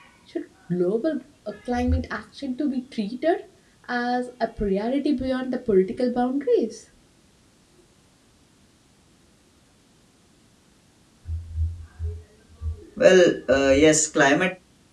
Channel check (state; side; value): identical; both; correlation 1.00